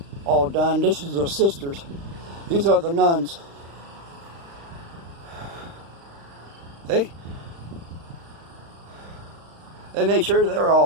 done. This is the sisters. These are the nuns. They made sure they're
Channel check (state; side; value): late; left; 35 ms